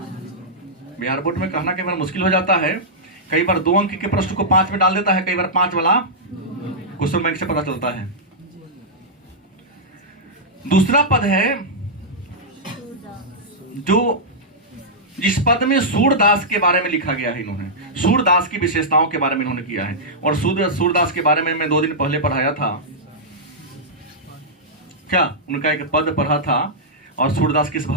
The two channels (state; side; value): normal; both; correlation -0.10